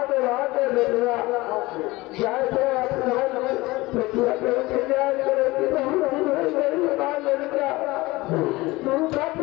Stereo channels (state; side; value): quieter; right; 20.7 dB